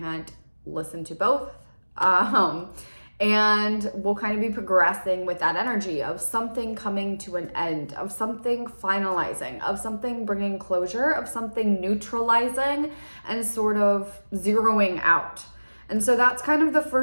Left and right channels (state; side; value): inverted; both; correlation -1.00